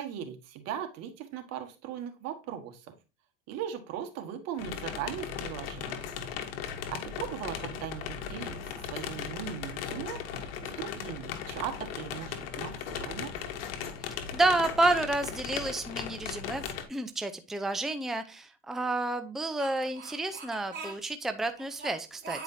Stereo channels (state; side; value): normal; both; correlation 0.57